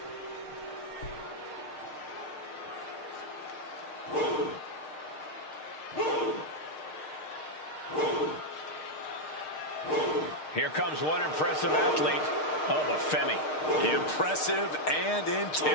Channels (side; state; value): right; late; 6.5 ms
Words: Here comes one impressive athlete. Oh, the Femi. Impressive and